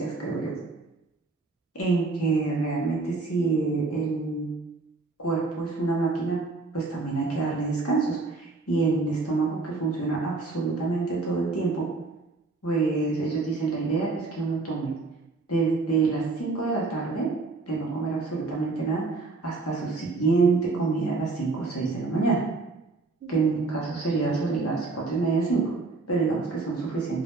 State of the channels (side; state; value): left; quieter; 3.7 dB